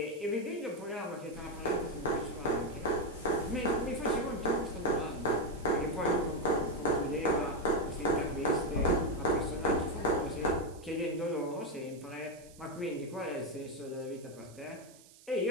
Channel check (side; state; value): right; noise; hiss, 23 dB below the sound